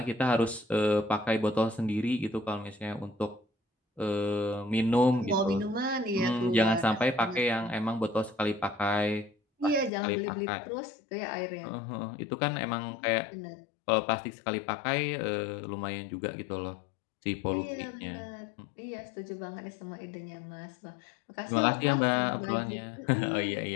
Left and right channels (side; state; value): right; drops out; at 9.9 s